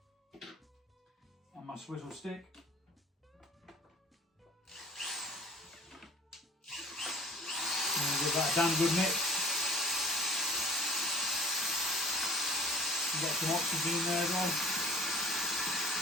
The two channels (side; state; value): both; normal; correlation 0.45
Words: And my swizzle stick. And give that a damn good mix. Get some oxygen in there as well.